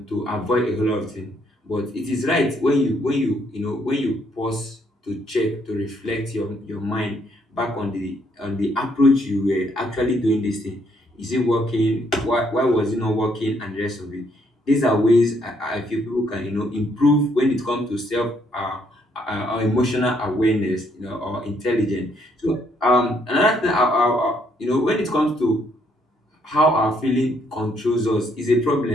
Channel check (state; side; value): normal; both; correlation 0.70